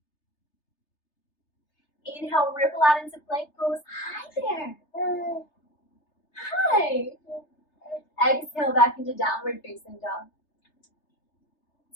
Inhale, ripple out into plank pose. Hi there. Hi. Exhale back into downward facing dog.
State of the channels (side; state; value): right; late; 3.3 ms